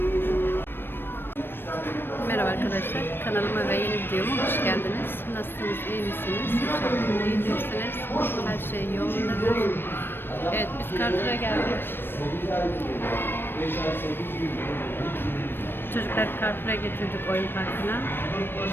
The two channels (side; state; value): right; late; 0.099 ms